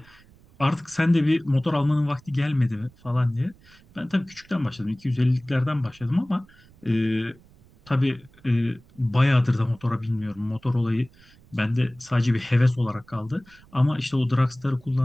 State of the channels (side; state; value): right; noise; rumble, 27 dB below the sound